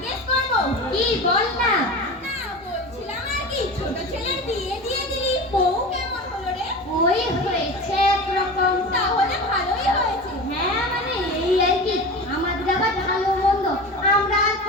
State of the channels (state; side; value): normal; both; correlation 0.30